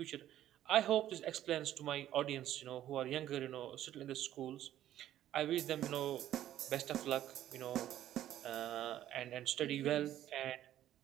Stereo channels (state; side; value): quieter; left; 12.4 dB